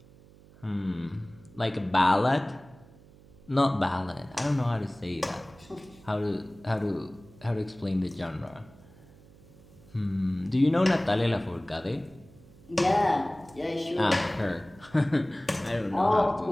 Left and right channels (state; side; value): noise; right; hum, 24 dB below the sound